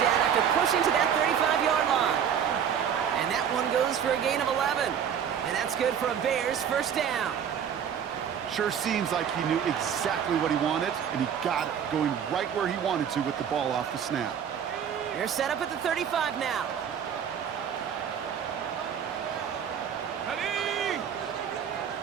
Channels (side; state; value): left; quieter; 8.3 dB